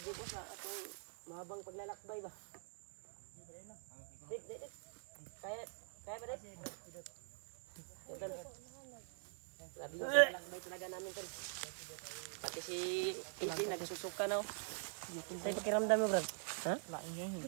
Dito sa atong mahabang paglalakbay ba? Dip. Kaya ba rin? Tol. Sabi yung paglalakbay talaga namin tol. Pati si Iti nagsusuka na. Ay pakiramdam mo Brad? Ha? Lain yun.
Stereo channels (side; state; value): left; silent; digital silence